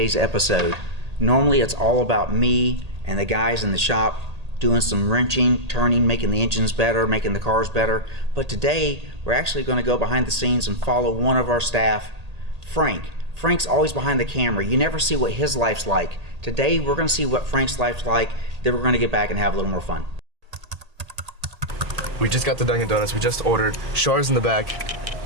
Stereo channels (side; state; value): left; late; 1.8 ms